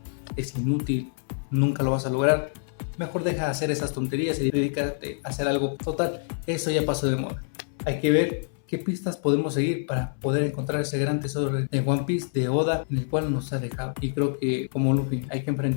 es inútil, nunca lo vas a lograr. mejor deja de hacer esas tonterías y dedícate a hacer algo. Total, eso ya pasó de moda. Hay que ver qué pistas podemos seguir para poder encontrar ese gran tesoro de One Piece, de Oda, en el cual nos ha dejado. Y creo que como Luffy hay que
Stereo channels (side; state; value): right; silent; 61 dB below the other